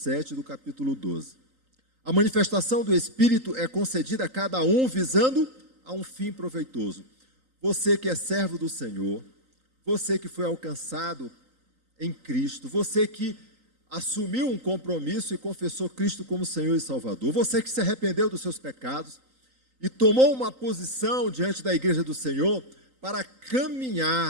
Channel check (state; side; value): late; left; 3.8 ms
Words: do capítulo 12. A manifestação do Espírito é concedida a cada um visando a um fim proveitoso. Você que é servo do Senhor, você que foi alcançado em Cristo, você que assumiu um compromisso e confessou Cristo como Senhor e Salvador, você que se arrependeu dos seus pecados e tomou uma posição diante da igreja do Senhor para